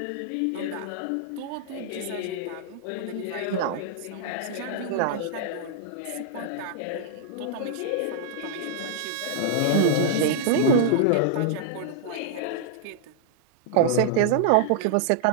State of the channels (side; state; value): both; different; correlation -0.01